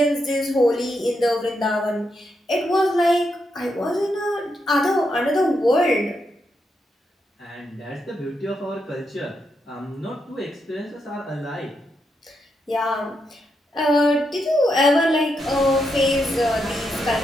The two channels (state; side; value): normal; both; correlation 0.82